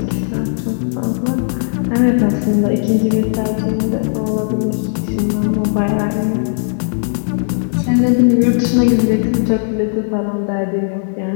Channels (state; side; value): silent; right; digital silence